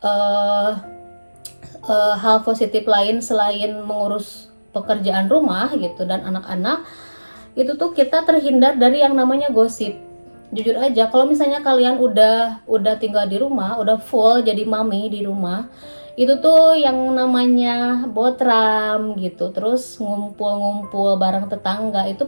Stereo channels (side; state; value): both; inverted; correlation -1.00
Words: hal positif lain selain mengurus pekerjaan rumah gitu dan anak-anak, itu tuh kita terhindar dari yang namanya gosip. Jujur aja kalau misalnya kalian udah tinggal di rumah, udah full jadi mami di rumah, itu tuh yang namanya botram gitu, terus ngumpul-ngumpul bareng tetangga itu